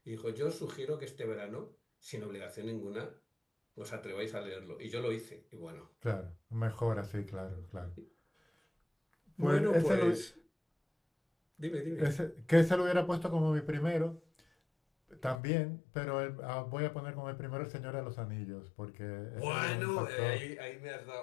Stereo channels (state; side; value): drops out; right; at 15.4 s